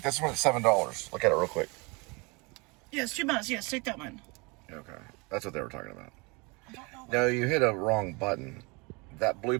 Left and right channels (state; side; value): quieter; left; 28.1 dB